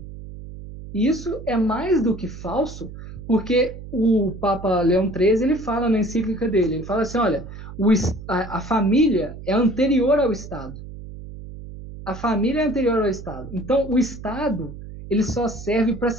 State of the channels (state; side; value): noise; right; hum, 13 dB below the sound